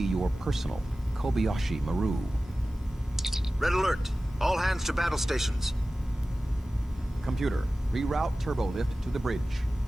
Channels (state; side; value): normal; both; correlation 0.96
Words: your personal Kobayashi Maru. Red alert! All hands to battle stations. Computer, reroute turbolift to the bridge.